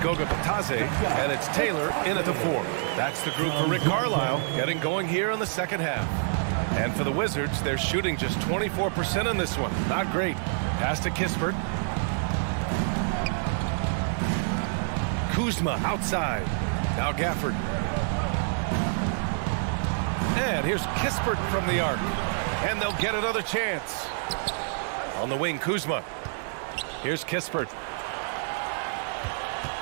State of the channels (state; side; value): silent; left; digital silence